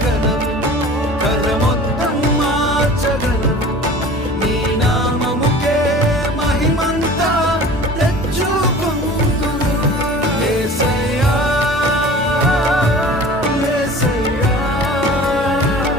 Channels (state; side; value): normal; both; correlation 0.42